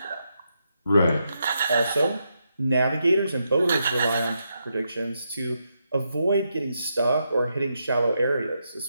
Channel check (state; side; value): inverted; both; correlation -0.83